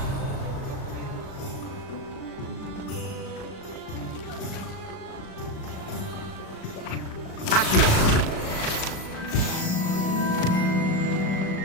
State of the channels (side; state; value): right; late; 37 ms